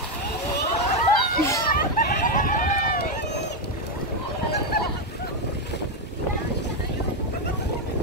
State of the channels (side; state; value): both; normal; correlation 0.04